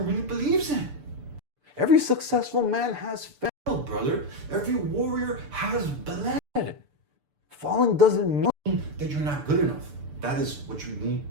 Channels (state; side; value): late; left; 6.8 ms